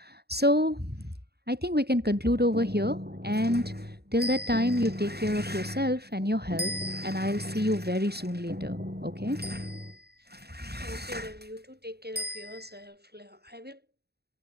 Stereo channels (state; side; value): late; left; 0.47 ms